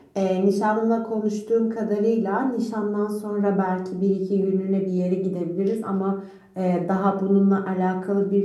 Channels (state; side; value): identical; both; correlation 1.00